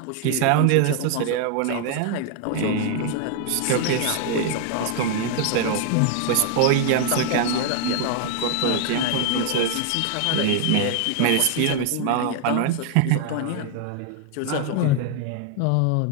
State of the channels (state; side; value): different; both; correlation 0.00